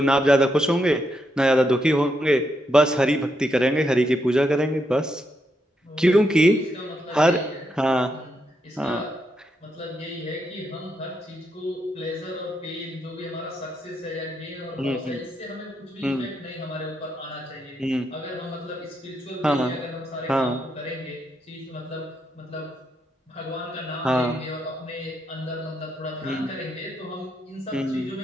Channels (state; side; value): normal; both; correlation 0.80